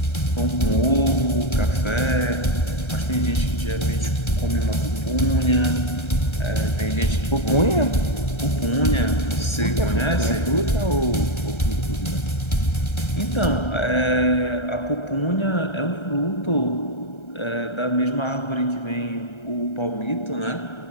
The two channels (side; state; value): right; late; 1.3 ms